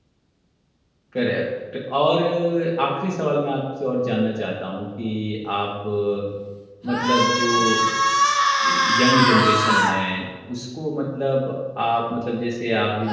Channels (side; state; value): both; identical; correlation 1.00